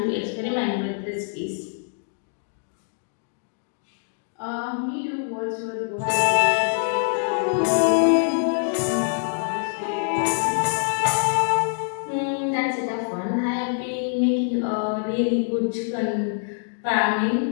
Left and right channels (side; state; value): right; silent; digital silence